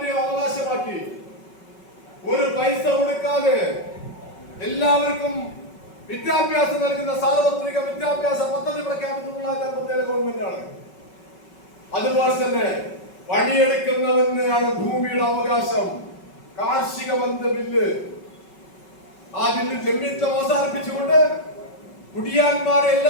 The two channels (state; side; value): late; right; 5.3 ms